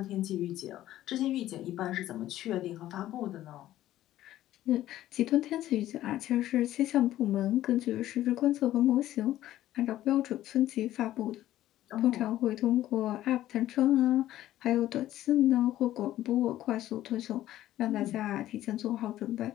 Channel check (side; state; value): right; quieter; 13.8 dB